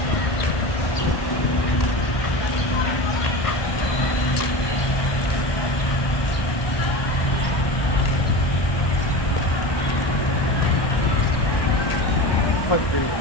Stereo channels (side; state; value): right; late; 1.2 ms